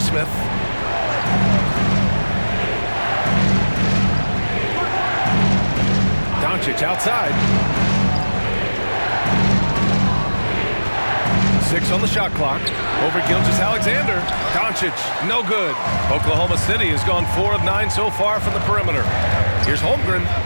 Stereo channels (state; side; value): inverted; both; correlation -1.00